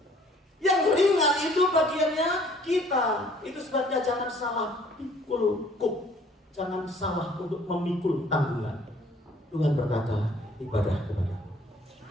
Yang ringan itu bagiannya kita. Itu sebabnya jangan salah pikul kuk. Jangan salah untuk memikul tanggungan. Tuhan berkata, ibadah kepadaku,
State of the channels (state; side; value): normal; both; correlation 0.57